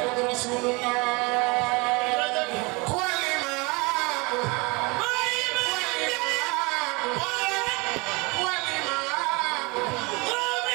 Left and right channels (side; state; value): left; quieter; 27.2 dB